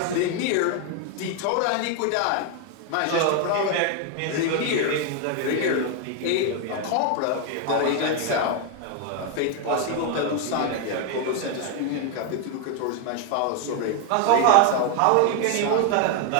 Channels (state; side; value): different; both; correlation 0.00